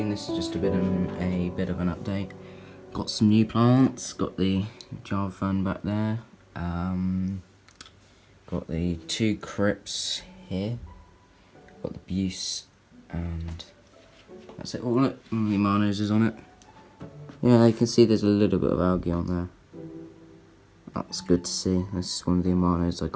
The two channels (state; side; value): identical; both; correlation 1.00